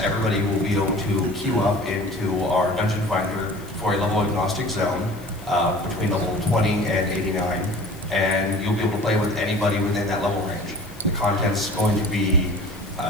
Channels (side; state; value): left; noise; hiss, 23 dB below the sound